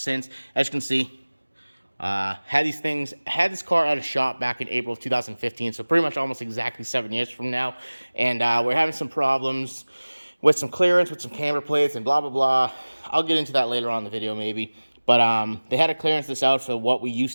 As you can see, had this car at a shop back in April of 2015, so pretty much almost exactly 7 years from now, and we're having some problems with some clearance, with some camber plates, and blah, blah, blah. I'll get into that later on in the video, maybe, but they had to clearance this out for what we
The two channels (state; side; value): inverted; both; correlation -1.00